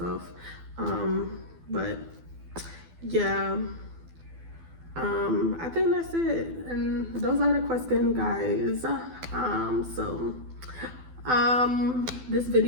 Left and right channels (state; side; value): late; left; 12 ms